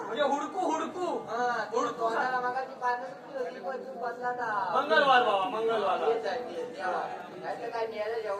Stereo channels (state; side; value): identical; both; correlation 1.00